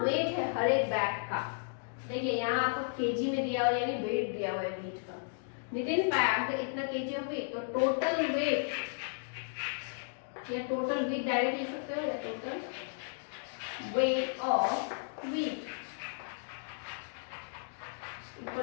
वेट है हर एक बैग का? देखिए यहाँ आपको केजी में दिया हुआ, यानी वेट दिया हुआ है wheat का। Nitin packed इतना केजी ऑफ wheat, तो टोटल वेट या टोटल wheat डायरेक्ट लिख सकते हो, या total weight of wheat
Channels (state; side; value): silent; right; digital silence